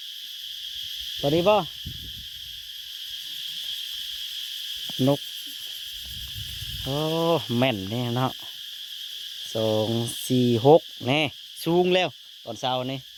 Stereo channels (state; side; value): identical; both; correlation 1.00